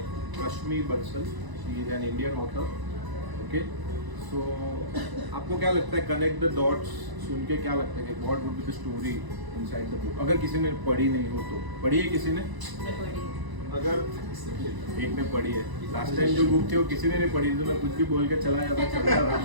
Rashmi Bansal. She is an Indian author. Okay. So आपको क्या लगता है Connect the Dots सुन के क्या लगता है कि what would be the story inside the book? अगर किसी ने पढ़ी नहीं हो तो पढ़ी है किसी ने? अगर एक ने पढ़ी है, लास्ट टाइम जो बुक थी वो किसी ने नहीं पढ़ी तो मैं कुछ भी बोल के चला जाता चलता रहा,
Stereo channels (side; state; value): left; late; 1.0 ms